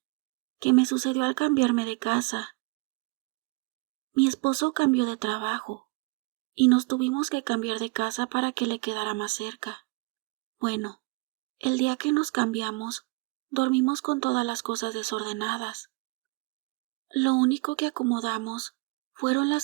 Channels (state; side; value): quieter; left; 28.9 dB